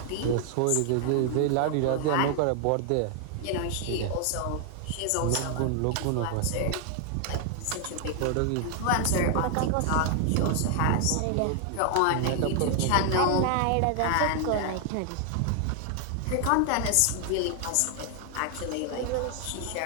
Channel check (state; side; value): different; both; correlation 0.00